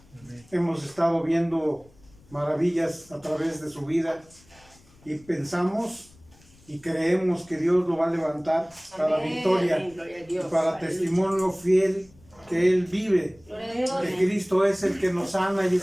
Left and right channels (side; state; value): left; noise; rumble, 28 dB below the sound